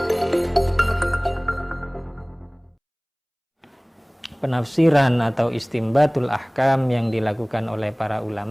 Penafsiran atau istimbatul ahkam yang dilakukan oleh para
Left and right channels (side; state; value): both; identical; correlation 1.00